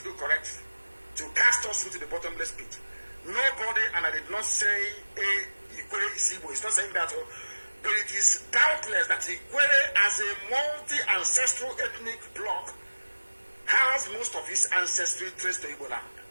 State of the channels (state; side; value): inverted; both; correlation -1.00